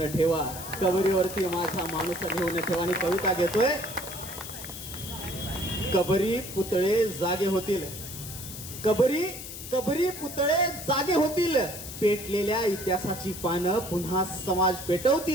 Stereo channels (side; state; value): left; noise; hiss, 10 dB below the sound